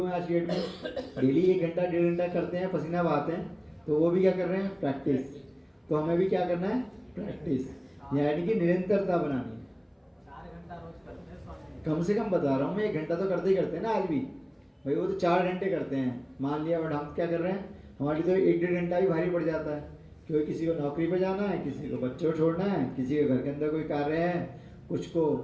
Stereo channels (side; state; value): both; identical; correlation 1.00